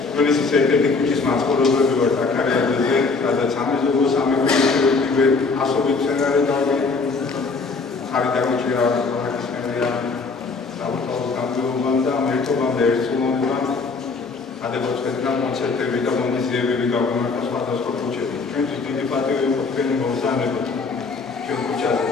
თბილისის ერთ-ერთი ქუჩის მაცხოვრებლები ვართ აქ არაერთხელ, სადაც სამეზობლო სამეფო ასობით მცენარე ხარი დაგუჭირა აქის მერია საბუთაოს გამგეობამ და ერთობამდე ერთსულობამ ადებოց ხეთნა კონცერტები და მონიზიებები გაგვიმართა სხვადასხვა ქუჩებში. ჩვენთვის დიდი პატივი იყო თქვენი მოგზაურობა ჩვენ ქუჩაზე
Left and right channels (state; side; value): quieter; right; 4.3 dB